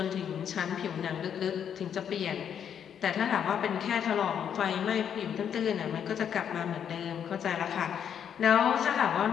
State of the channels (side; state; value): right; quieter; 8.5 dB